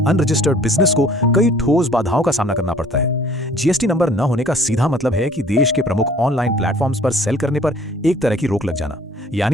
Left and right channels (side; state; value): both; normal; correlation 0.54